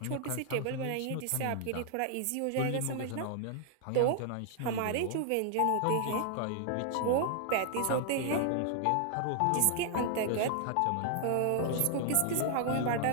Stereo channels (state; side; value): different; both; correlation 0.00